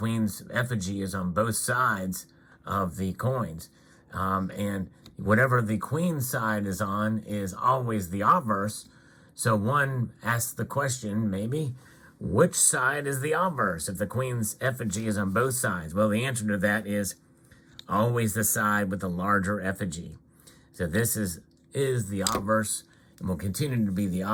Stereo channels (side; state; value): both; identical; correlation 1.00